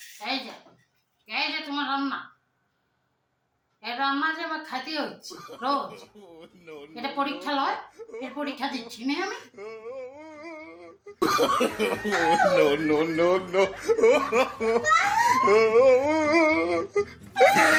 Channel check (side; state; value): both; identical; correlation 1.00